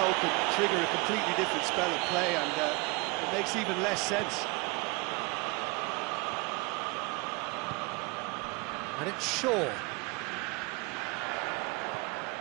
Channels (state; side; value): quieter; left; 26.6 dB